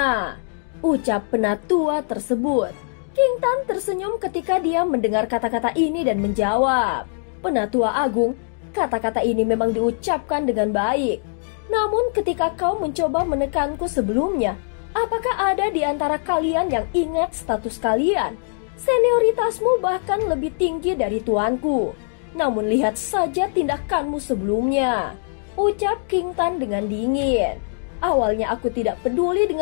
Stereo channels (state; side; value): silent; right; digital silence